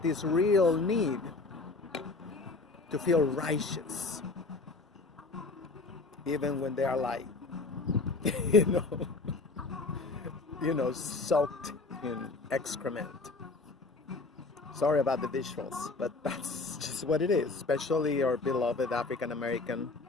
this real need to feel righteous. Even when they are like, soaked in excrement. Sorry about the visuals, but that's just what it is, especially our beloved African American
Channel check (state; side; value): quieter; right; 3.7 dB